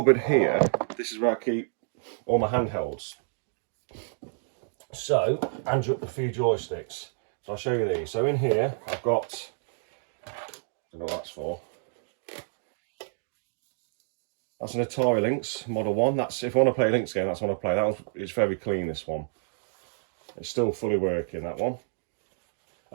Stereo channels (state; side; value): silent; left; digital silence